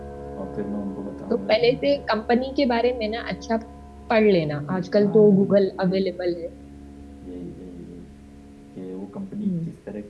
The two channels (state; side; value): identical; both; correlation 1.00